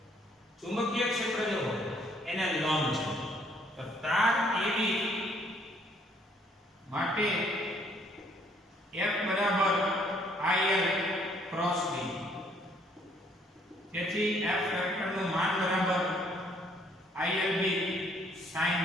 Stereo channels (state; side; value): normal; both; correlation 0.65